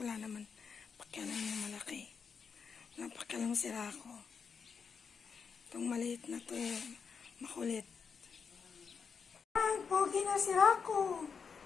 naman. Pakialam niya malaki. Napakialam si Rako. Itong maliit na to, makulit. Ay, pogi na si Rako.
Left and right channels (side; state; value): right; quieter; 6.0 dB